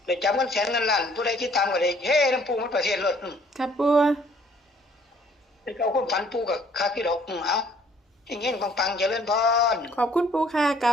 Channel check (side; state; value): both; normal; correlation 0.60